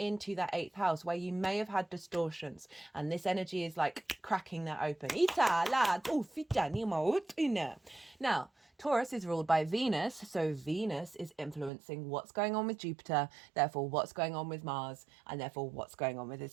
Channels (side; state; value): left; drops out; at 11.7 s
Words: that 8th house where you may have had distortions, and this energy is like cracking that open. Now, Taurus is ruled by Venus, so Venus is influencing what's going on with Jupiter, therefore what's going on with Mars, and therefore what's going on with